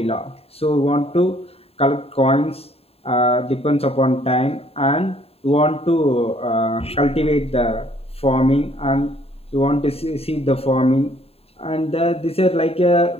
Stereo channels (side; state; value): right; late; 0.29 ms